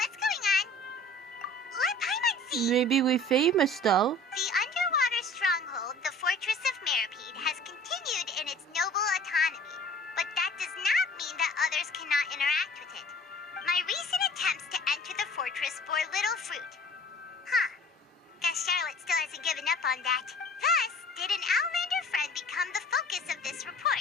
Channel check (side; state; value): both; normal; correlation 0.47